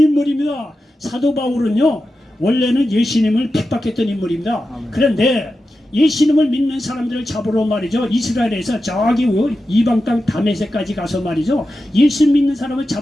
사도 바울은요, 원래는 예수님을 핍박했던 인물입니다. 아멘. 그런데 예수님을 믿는 사람들을 잡으러 말이죠, 이스라엘에서 저기 이방 땅 다메섹까지 가서 말이죠, 예수 믿는 사람을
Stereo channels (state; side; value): normal; both; correlation 0.91